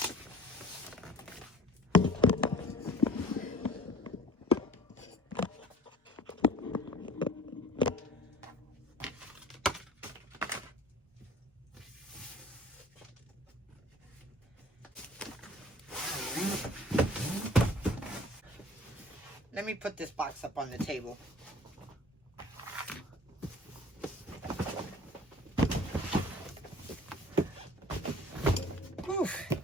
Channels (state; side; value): normal; both; correlation 0.47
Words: let me put this box up on the table. Whew.